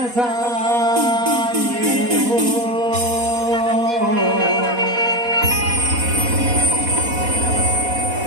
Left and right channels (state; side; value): late; left; 4.1 ms